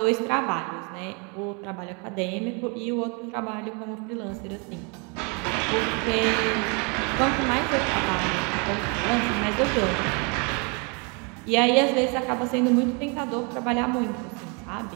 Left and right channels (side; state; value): left; quieter; 33.6 dB